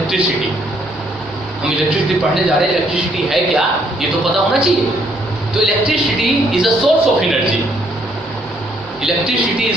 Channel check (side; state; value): both; normal; correlation 0.68